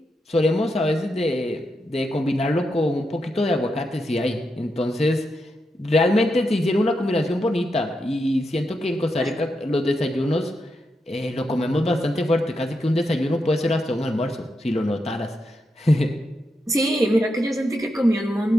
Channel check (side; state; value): both; normal; correlation 0.85